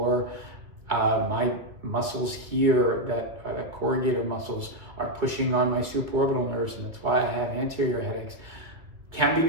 my muscles here that are the corrugator muscles are pushing on my supraorbital nerves, and that's why I have anterior headaches, can be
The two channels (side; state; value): left; late; 2.2 ms